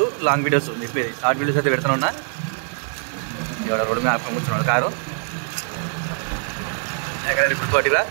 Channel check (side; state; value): left; silent; 64 dB below the other